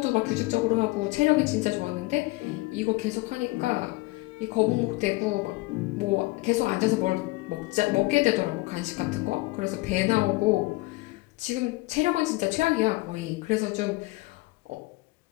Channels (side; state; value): right; quieter; 21.8 dB